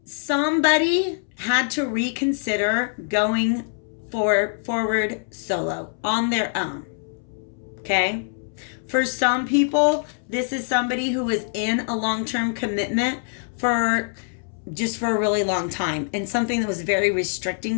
somebody had to reconsider going forward solo on their own. Okay? For some people, this is somebody who is in a long-term commitment for a really long time, and something that was very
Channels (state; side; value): silent; right; 63 dB below the other